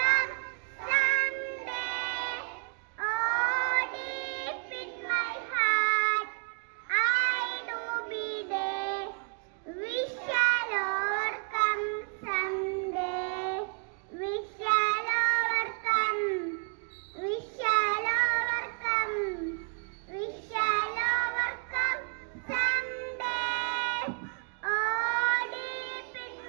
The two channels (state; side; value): quieter; left; 37.9 dB